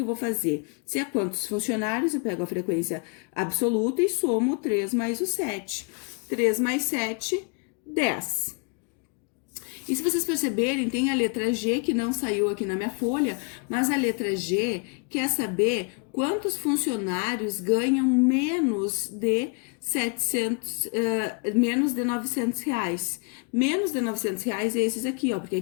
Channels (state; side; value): quieter; right; 34.5 dB